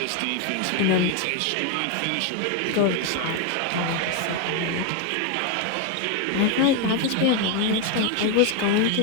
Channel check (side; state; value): both; different; correlation 0.02